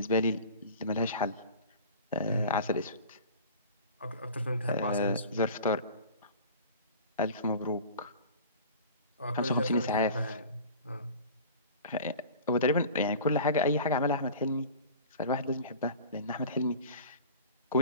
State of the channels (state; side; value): inverted; both; correlation -0.40